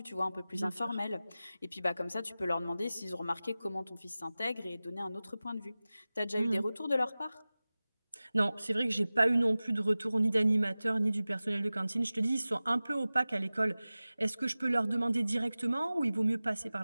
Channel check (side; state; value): both; inverted; correlation -0.97